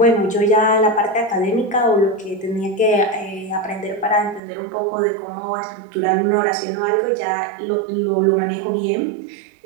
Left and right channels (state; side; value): drops out; left; at 4.4 s